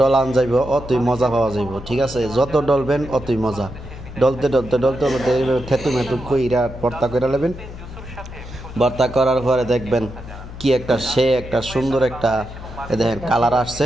ডলান যাইব অতই মজা পাওয়া যাইব, ঠিক আছে। যত ডলবেন অতই মজা। ডলতে ডলতে ডলতে ডলতে থেতু মেতু কইরা ভর্তা করে নেবেন। ভর্তা করার পরে দেখবেন কি একটা একটা সুন্দর একটা দেখেন কালার আসছে।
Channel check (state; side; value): noise; left; hum, 13 dB below the sound